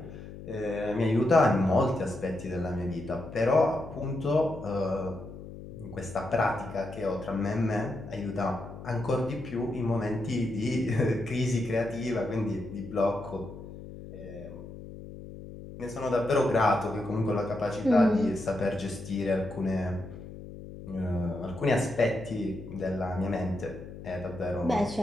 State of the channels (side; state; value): left; noise; hum, 13 dB below the sound